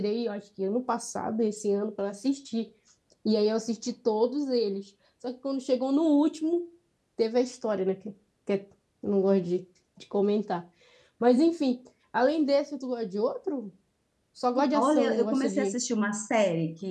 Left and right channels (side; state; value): both; identical; correlation 1.00